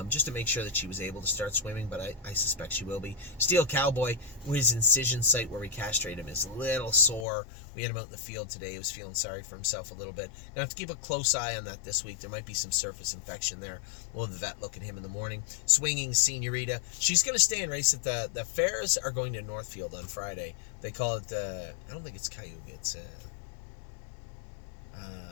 Just to make sure that she was able to start swimming, but I suspect she will be. Steel Cowboy, his incision site where we castrate him is a little sore. We had him out in the field today. He was feeling sorry for himself a little bit. Gonna have to keep a close eye on that this week. There might be some surface infection there. We'll have the vet look at him in the morning. Swinging Senorita, she's going to stay and race at the fairs are going to Northfield on Friday. They call it I don't think it's Cayuga. It's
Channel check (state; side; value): drops out; right; at 7.2 s